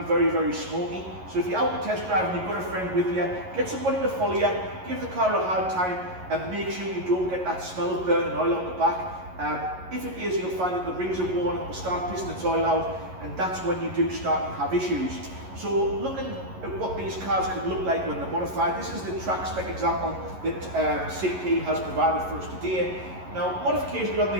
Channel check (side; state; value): left; late; 11 ms